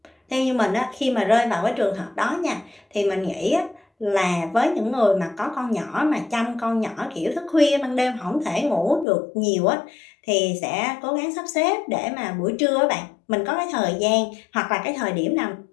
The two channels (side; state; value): right; drops out; at 9.1 s